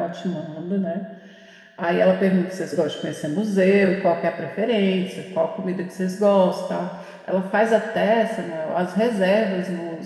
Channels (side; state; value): both; identical; correlation 1.00